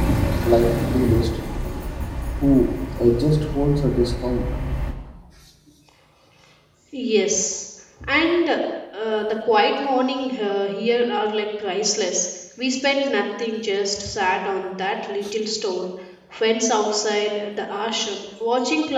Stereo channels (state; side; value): identical; both; correlation 1.00